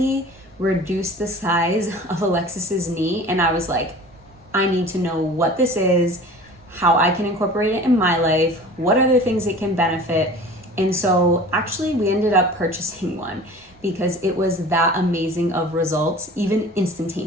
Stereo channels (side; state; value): both; normal; correlation 0.41